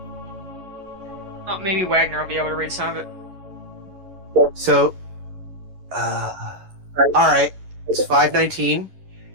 Oh, maybe Wagner will be able to read some of it. So, all right, it's 5:19.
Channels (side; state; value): left; late; 11 ms